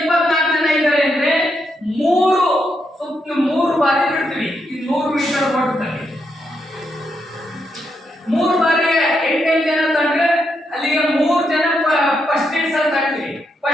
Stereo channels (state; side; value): normal; both; correlation 0.81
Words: ಜನ ಇದ್ದಾರೆ ಅಂದ್ರೆ 3 ಬಾರಿ ಬಿಡ್ತೀವಿ. ಈ 100 ಮೀಟರ್ ಓಟದಲ್ಲಿ 3 ಬಾರಿ 8 ಜನ ತಂದ್ರೆ ಅಲ್ಲಿಗೆ 3 ಜನ ಫಸ್ಟ್ ಇಡ್ಸ್ ಅಲ್ಲಿ ತರ್ತೀವಿ.